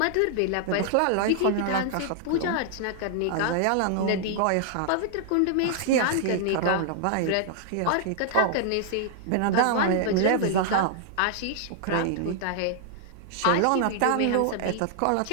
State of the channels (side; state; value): both; different; correlation -0.01